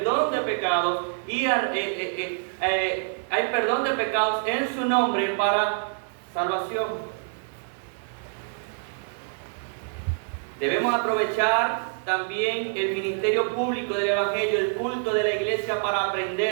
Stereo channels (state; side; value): silent; left; digital silence